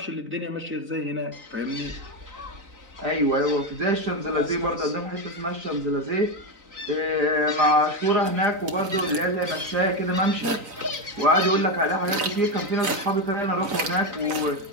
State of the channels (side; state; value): left; late; 3.9 ms